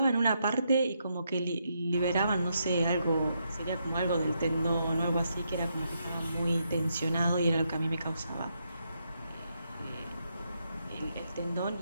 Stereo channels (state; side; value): inverted; both; correlation -0.80